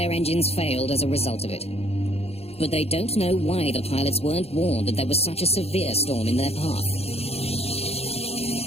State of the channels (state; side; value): late; right; 0.29 ms